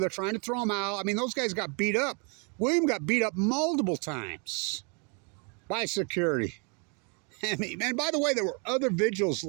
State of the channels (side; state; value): left; quieter; 35.9 dB